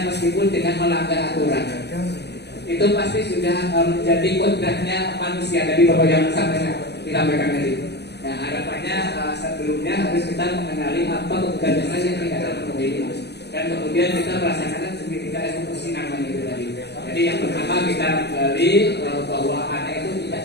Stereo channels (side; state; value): right; late; 0.49 ms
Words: meskipun dengan melanggar aturan. Itu pasti sudah menjadi kodratnya manusia. Tadi Bapak yang disampaikan tadi. Nah, harapannya sebelumnya harus kita mengenali apa kebutuhan dasar yang tidak terpenuhi, dan kemudian kita merasakan segitiga eksekusi namanya itu tadi. Jadi yang pertama kita menggali bahwa anak itu tidak